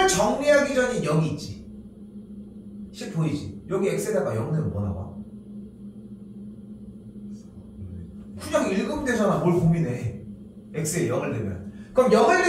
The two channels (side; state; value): both; identical; correlation 1.00